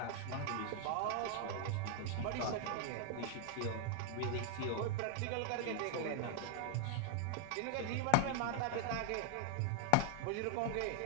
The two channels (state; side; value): different; both; correlation 0.00